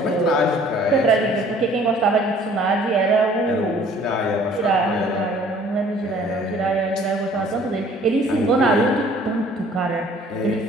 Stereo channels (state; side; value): normal; both; correlation 0.55